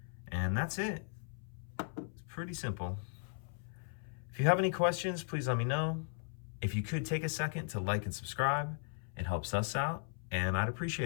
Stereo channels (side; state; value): right; silent; 53 dB below the other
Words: and that's it. It's pretty simple. If you have any questions, please let me know. If you could take a second to like and subscribe, it helps us out, and I'd